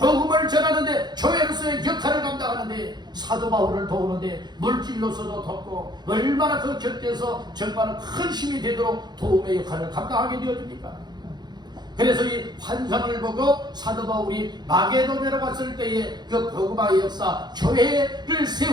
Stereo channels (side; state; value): left; late; 0.21 ms